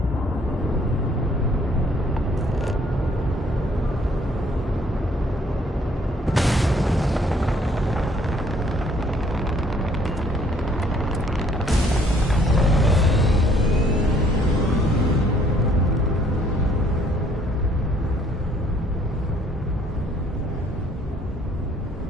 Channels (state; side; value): normal; both; correlation 0.62